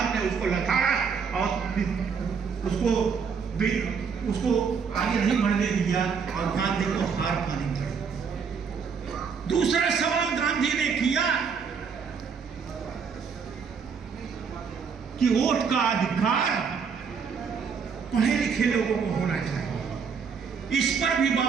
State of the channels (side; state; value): left; quieter; 6.1 dB